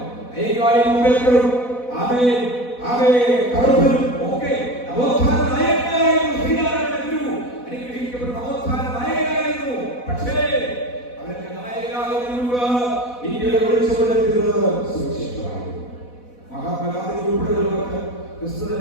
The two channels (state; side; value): late; right; 4.1 ms